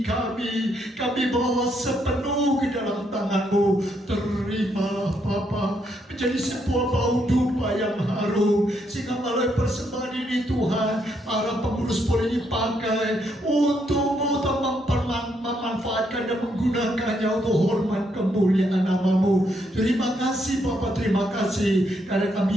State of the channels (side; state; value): both; normal; correlation 0.76